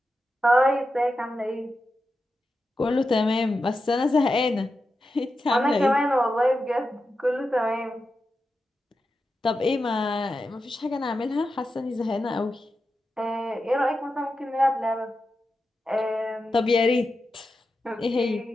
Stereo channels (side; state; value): both; normal; correlation 0.90